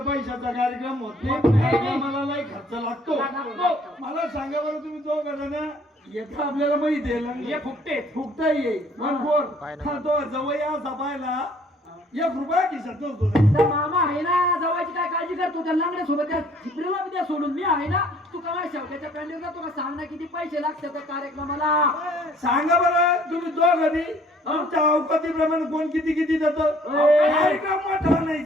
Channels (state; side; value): normal; both; correlation 0.58